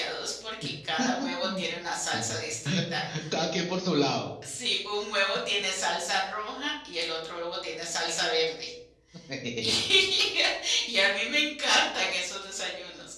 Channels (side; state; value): both; identical; correlation 1.00